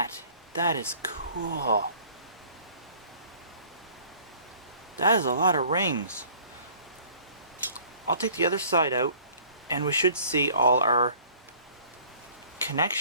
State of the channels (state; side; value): inverted; both; correlation -0.52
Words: That is cool. That is a lot of rings. I'll take the other side out, and we should see all our